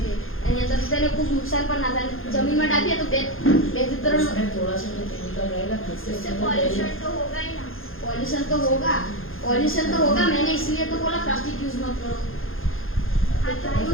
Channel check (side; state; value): right; late; 0.60 ms